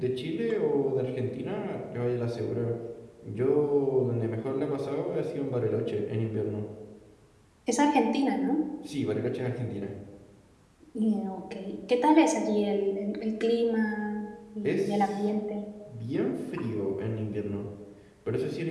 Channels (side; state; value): both; identical; correlation 1.00